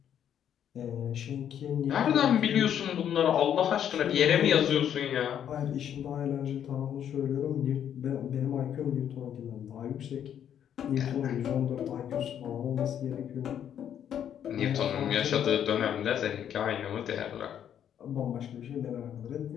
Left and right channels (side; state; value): right; quieter; 9.5 dB